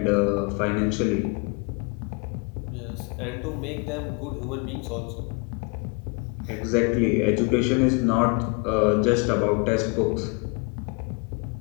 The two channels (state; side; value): quieter; right; 32.3 dB